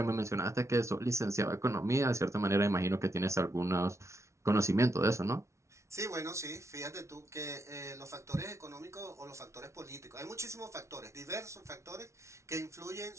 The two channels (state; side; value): late; left; 0.14 ms